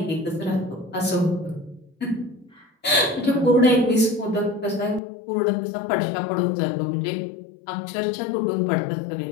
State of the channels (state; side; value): drops out; right; at 5.0 s